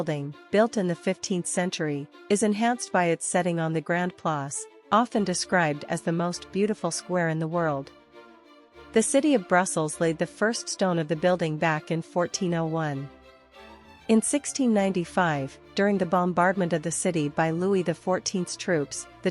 built in the 15th century, is enhanced by its setting on the Grand Place, often described as the most beautiful square in the world. The city of Brussels laid the first stone of the building back in 1401. In 1695, during the bombardment of the city by Louis XIV's troops, the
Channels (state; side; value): identical; both; correlation 1.00